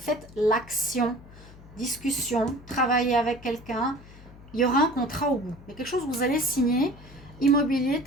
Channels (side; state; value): left; noise; hum, 20 dB below the sound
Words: l'action. Discussion. Travaillez avec quelqu'un. Il y aura un contrat au bout. Il y a quelque chose que vous allez signer. Immobilier,